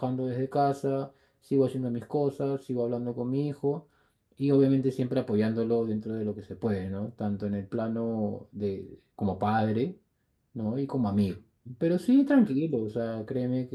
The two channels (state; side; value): identical; both; correlation 1.00